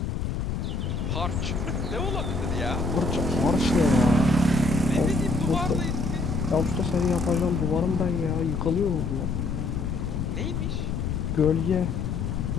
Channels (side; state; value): left; noise; rumble, 1 dB below the sound